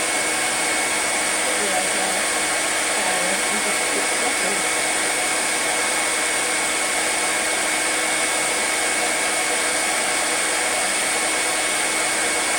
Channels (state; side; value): identical; both; correlation 1.00